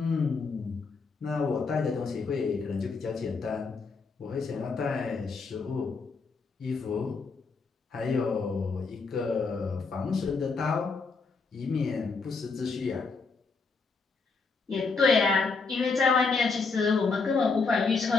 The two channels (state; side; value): quieter; right; 4.5 dB